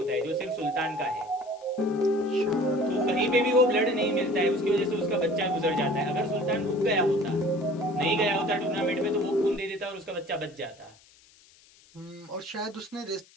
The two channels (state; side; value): noise; left; hiss, 27 dB below the sound